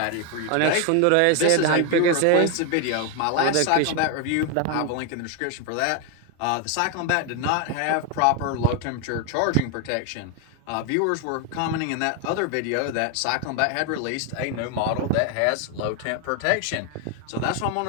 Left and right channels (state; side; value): different; both; correlation 0.01